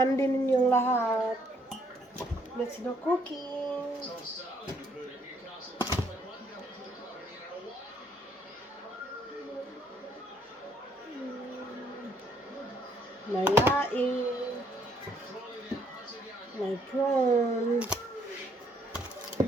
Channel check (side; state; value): both; normal; correlation 0.68